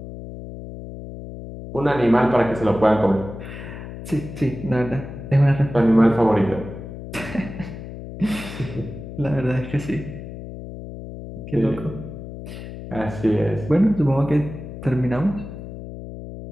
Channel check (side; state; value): left; noise; hum, 11 dB below the sound